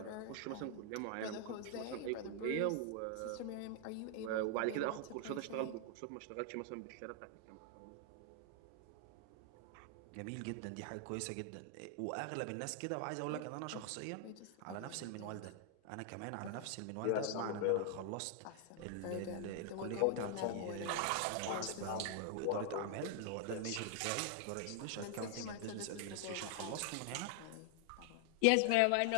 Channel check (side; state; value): both; different; correlation 0.00